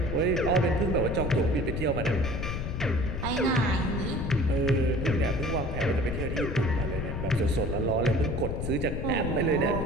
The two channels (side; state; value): left; noise; rumble, 4 dB below the sound